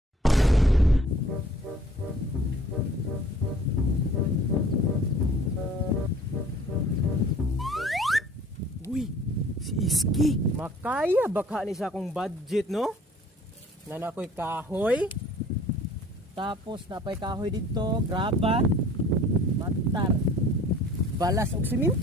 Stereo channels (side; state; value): both; normal; correlation 0.52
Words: Uy, si Iski. Makaya baka ni sa akong budget, no? Na nakoy kahoy. Tapos napay kahoy dito, graba, matar. Balas og